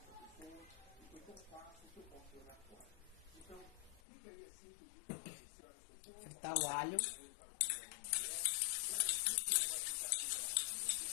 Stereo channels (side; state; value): right; drops out; at 4.0 s